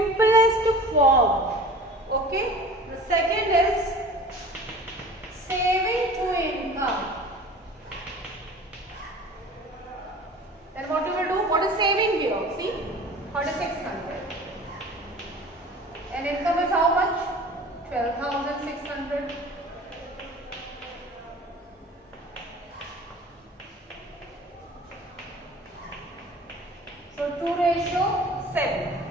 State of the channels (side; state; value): both; normal; correlation 0.42